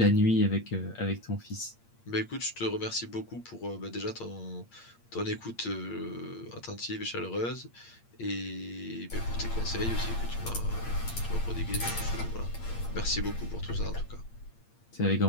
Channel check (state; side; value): late; right; 8.7 ms